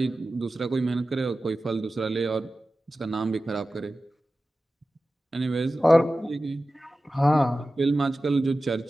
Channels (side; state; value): both; normal; correlation 0.95